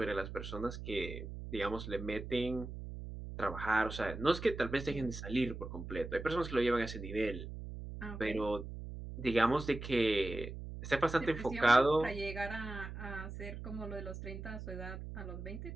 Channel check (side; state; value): right; noise; hum, 9 dB below the sound